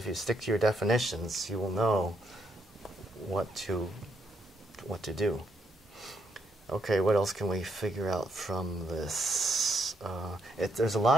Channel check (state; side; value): normal; both; correlation 0.76